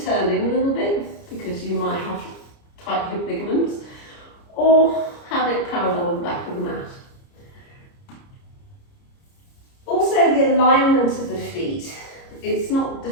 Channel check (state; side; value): late; right; 30 ms